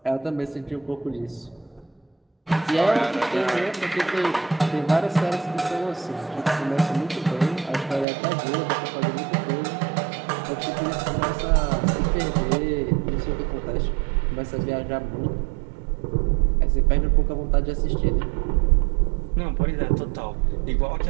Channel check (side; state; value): left; drops out; at 8.1 s